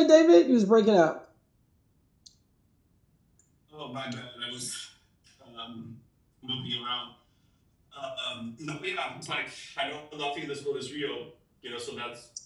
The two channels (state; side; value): identical; both; correlation 1.00